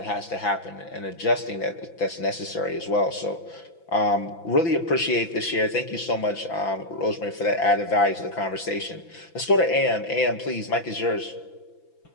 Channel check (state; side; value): late; right; 5.9 ms